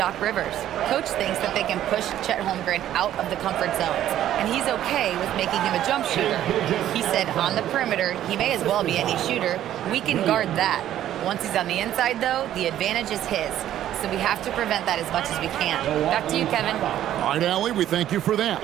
Rivers. Coach thinks that they can push Chet Holmgren out of the comfort zones, and he's okay with making him a jump shooter. He said on the perimeter, he may as well be any shooter. We can guard that. Once he's on the inside, though, the advantage is his. So we have to prevent that as much as we can. Back to you, Kevin. All right, Allie, we thank you for that.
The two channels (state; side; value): quieter; left; 12.0 dB